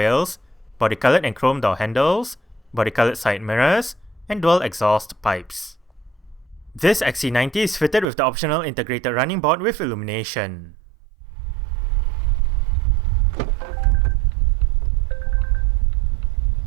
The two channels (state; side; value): drops out; left; at 8.1 s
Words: body-colored and chrome door handles, body-colored side mirrors, and dual exhaust pipes. This XC90 is fitted with the optional integrated running board with illumination.